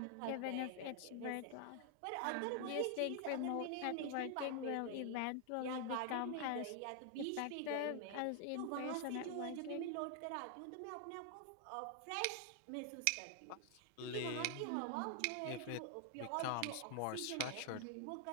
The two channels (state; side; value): different; both; correlation 0.00